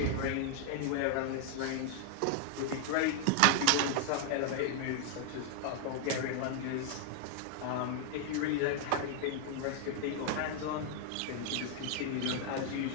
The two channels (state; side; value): different; both; correlation 0.00